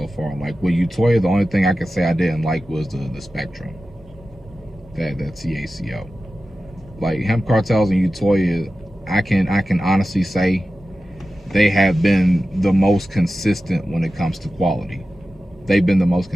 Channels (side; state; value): both; normal; correlation 0.94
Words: far. Like with Utoya, the only thing I could say I didn't like was the Spectrum. That TACO. Like Hemp Cartels and Utoya, I can honestly say they have been the most consistent when it comes to quality. They've been the most